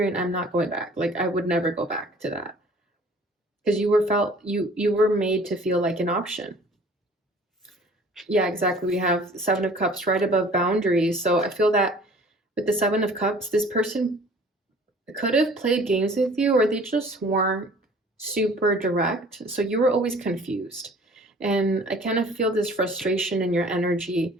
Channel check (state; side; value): normal; both; correlation 0.50